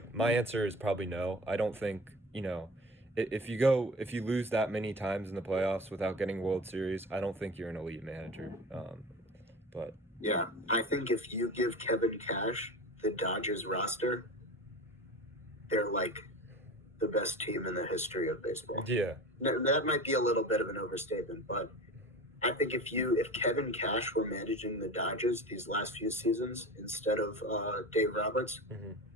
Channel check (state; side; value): normal; both; correlation 0.33